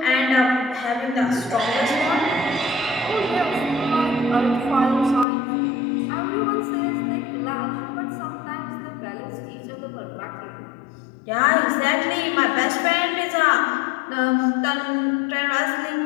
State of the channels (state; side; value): drops out; right; at 5.2 s